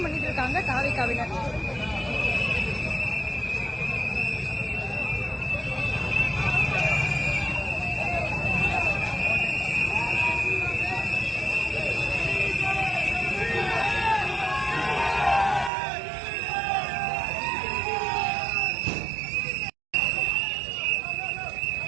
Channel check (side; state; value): left; drops out; at 15.7 s